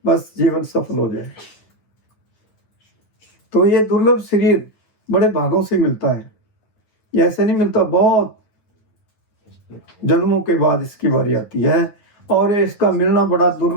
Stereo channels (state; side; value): late; right; 9.5 ms